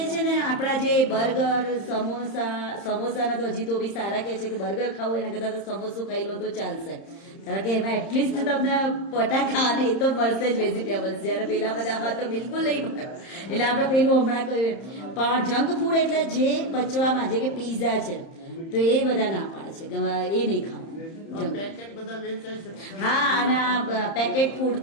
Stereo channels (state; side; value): late; right; 31 ms